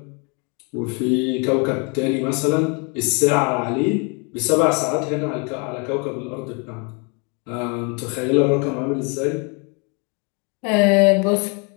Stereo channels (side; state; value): right; quieter; 34.0 dB